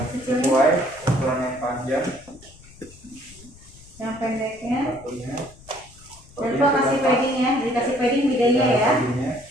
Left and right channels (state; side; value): noise; left; rumble, 23 dB below the sound